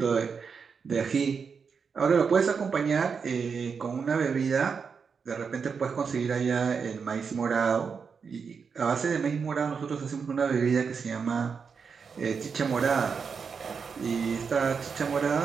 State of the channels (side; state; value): left; quieter; 5.8 dB